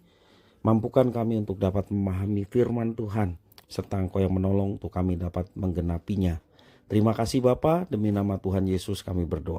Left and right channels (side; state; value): both; identical; correlation 1.00